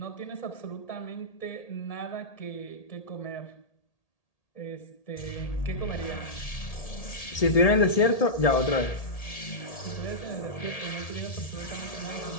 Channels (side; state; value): right; late; 1.8 ms